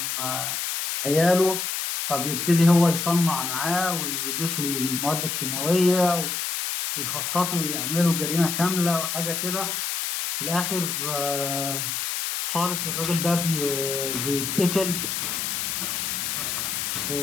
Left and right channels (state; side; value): noise; left; hiss, 2 dB below the sound